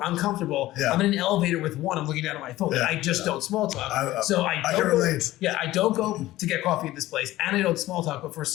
I'm comfortable. Yeah. I'm in an elevator with one, I'm looking down at my phone. Yeah. I just don't small talk. I can relate. I don't go to get coffee at this place and I don't small talk, but for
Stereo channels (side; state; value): right; quieter; 16.2 dB